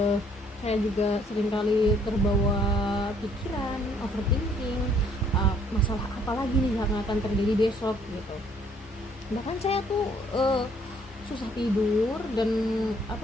Saya juga seringkali terbawa pikiran, overthinking, masalah apa lagi nih yang akan terjadi besok gitu. Bahkan saya tuh susah tidur dan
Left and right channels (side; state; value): both; normal; correlation 0.63